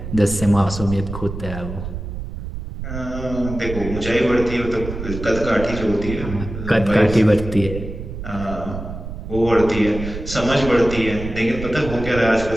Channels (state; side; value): noise; right; rumble, 8 dB below the sound